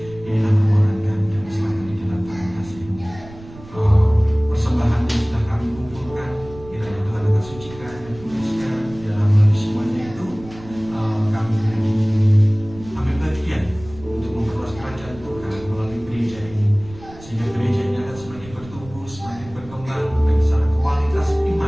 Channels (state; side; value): noise; right; rumble, 18 dB below the sound